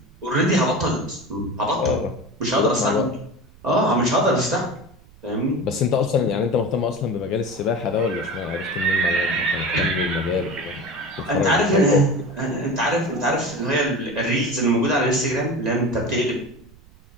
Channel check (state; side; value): noise; right; rumble, 25 dB below the sound